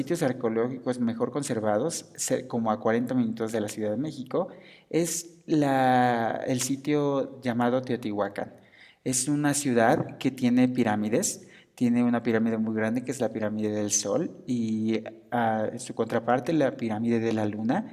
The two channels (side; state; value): both; identical; correlation 1.00